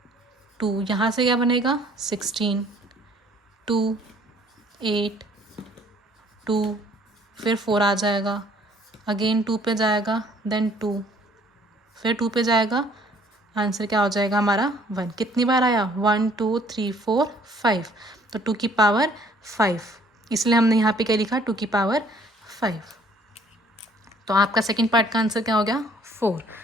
2 यहाँ से क्या बनेगा 16, 2 8, 2 फिर 4 आ जाएगा, अगेन 2 पे जाएगा, देन 2 फिर 2 पे जाएगा, आंसर क्या हो जाएगा हमारा 1। कितनी बार आया 1 2 3 4 5, तो 2 की पावर 5, इसलिए हमने यहाँ पे क्या लिखा 2 की पावर 5। तो आपका सेकंड पार्ट का आंसर क्या हो गया 4।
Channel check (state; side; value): normal; both; correlation 0.59